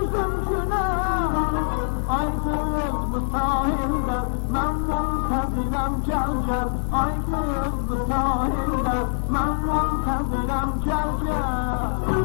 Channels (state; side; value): silent; right; 60 dB below the other